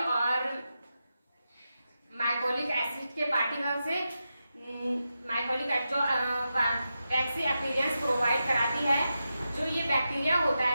और माइकोलिक एसिड के पार्टिकल से। माइकोलिक एसिड जो वैक्सी अपीयरेंस प्रोवाइड कराती है। जो ये बैक्टीरिया होता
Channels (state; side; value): inverted; both; correlation -0.89